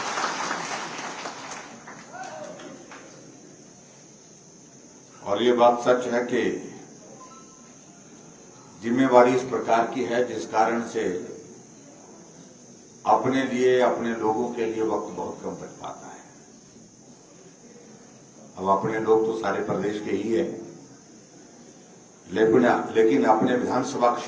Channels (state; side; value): identical; both; correlation 1.00